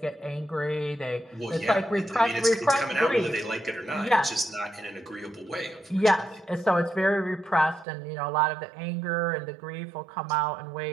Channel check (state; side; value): drops out; left; at 7.9 s